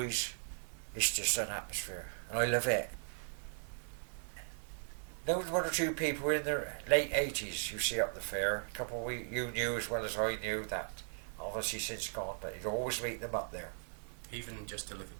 it's just an atmosphere, and I love it. There was one or two people in their late 80s you see up the fair. A couple you knew as well as I knew that obviously since gone, but you'd always meet them up there. Even just to look at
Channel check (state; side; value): silent; left; digital silence